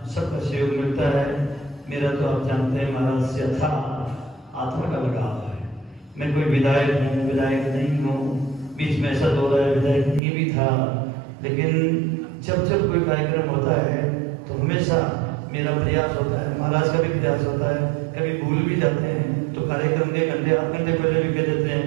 सबका सहयोग मिलता है। मेरा तो आप जानते हैं महाराज से अथाह आत्मा का लगाव है। मैं कोई विधायक हूँ, विधायक नहीं हूँ, बीच में ऐसा दौर है विधायक नहीं भी था, लेकिन जब कोई कार्यक्रम होता है तो हमेशा मेरा प्रयास होता है, महाराज का भी प्रयास होता है। कभी भूल भी जाते हैं तो कार्यक्रम के घंटे आध घंटे पहले भी कह देते हैं,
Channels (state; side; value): drops out; left; at 10.2 s